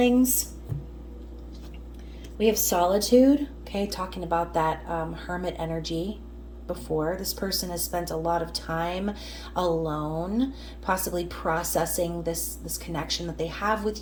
we have solitude, okay, talking about that hermit energy before. This person has spent a lot of time alone, possibly processing this connection that they have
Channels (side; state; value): both; identical; correlation 1.00